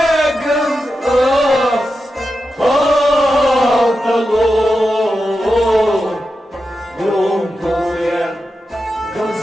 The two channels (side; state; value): both; normal; correlation 0.90